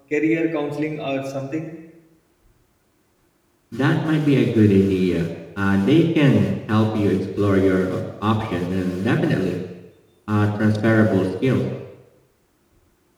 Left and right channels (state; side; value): identical; both; correlation 1.00